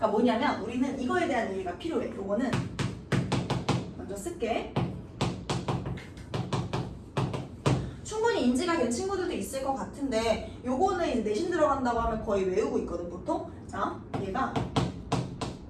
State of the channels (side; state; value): both; identical; correlation 1.00